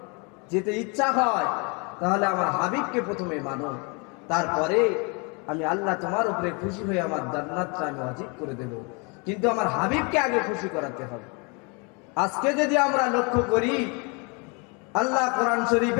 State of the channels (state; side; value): quieter; right; 32.0 dB